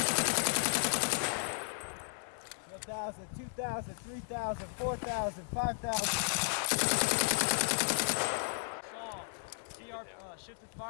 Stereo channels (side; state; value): right; silent; digital silence